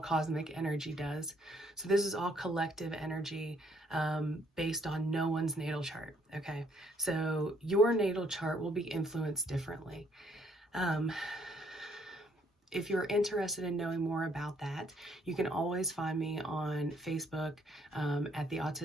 energy does. So this is all collective energy based on no one's natal chart, okay? So your natal chart will be influenced differently. If you're interested in knowing more about that, you can always find me on Facebook at the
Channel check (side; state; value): both; normal; correlation 0.67